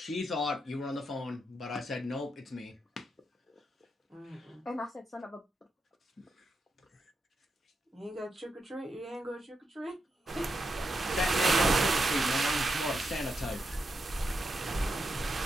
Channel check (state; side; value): normal; both; correlation 0.85